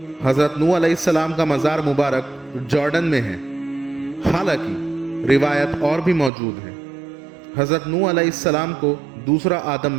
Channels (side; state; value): left; drops out; at 6.3 s